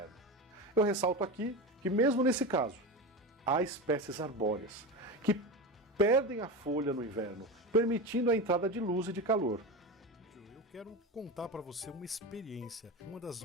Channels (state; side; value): normal; both; correlation 0.23